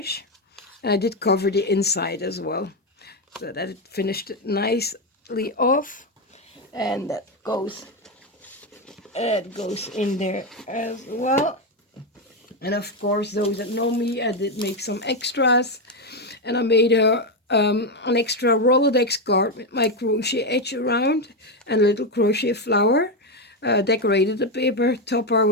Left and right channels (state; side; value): normal; both; correlation 0.08